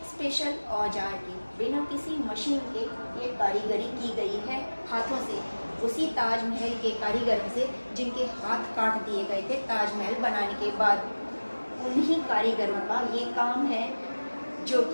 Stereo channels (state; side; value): inverted; both; correlation -1.00